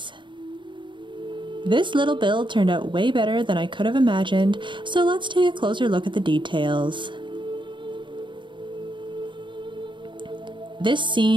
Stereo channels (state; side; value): late; left; 0.23 ms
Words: This little build turned out way better than I could have imagined, so let's take a closer look at the details. This